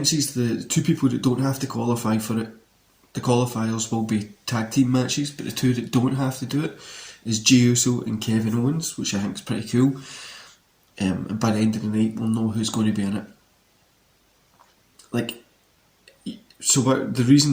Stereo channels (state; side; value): identical; both; correlation 1.00